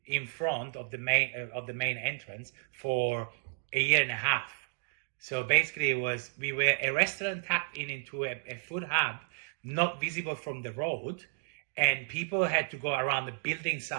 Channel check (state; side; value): silent; left; digital silence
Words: in front of the main entrance for a year and a half. So basically we were a restaurant tapped into a food hub, not visible from the road, and people had to go around the building